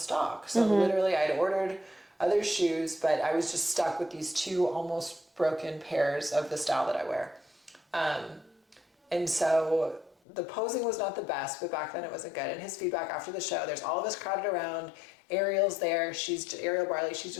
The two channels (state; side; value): drops out; right; at 10.2 s